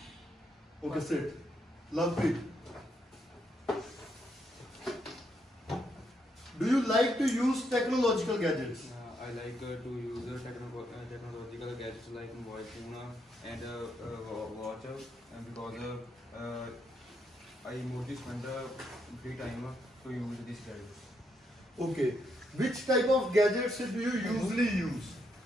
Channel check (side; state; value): both; normal; correlation 0.77